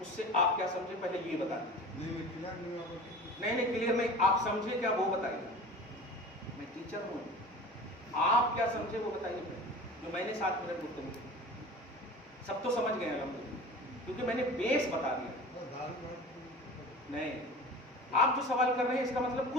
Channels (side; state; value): both; normal; correlation 0.37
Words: اس سے آپ کیا سمجھے پہلے یہ بتا دیجیے. نہیں کلیئر نہیں, آپ سمجھے کیا وہ بتائیے. میں ٹیچر ہوں, آپ کیا سمجھے وہ بتائیے. جو میں نے 7 منٹ گفتگو کی سب تو سمجھ گئے الحمدللہ, کیونکہ میں نے بیس بتا دیا. نہیں, آپ جو سوال کر رہے ہیں اس کا مطلب